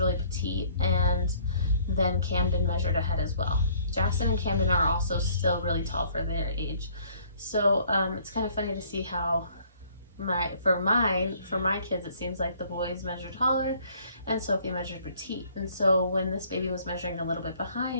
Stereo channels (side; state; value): both; inverted; correlation -0.59